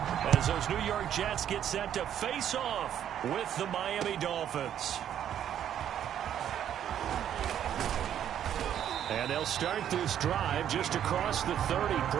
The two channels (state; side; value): quieter; left; 10.1 dB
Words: as those New York Jets get set to face off with the Miami Dolphins. And they'll start this drive just across the 30.